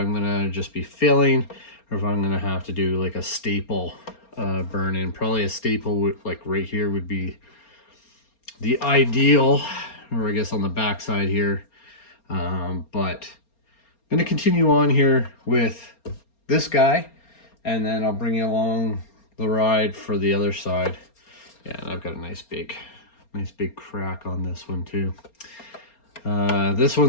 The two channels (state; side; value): late; right; 4.3 ms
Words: going to just be filling or if I'm going to have to do like a staple burn in. Probably a staple would, like right here, would be the ideal, or I guess on the back side here. But I'm going to continue on here with this guy, and then I'll bring you along the ride for the other side. Yeah, and I've got a nice big crack on this one too. This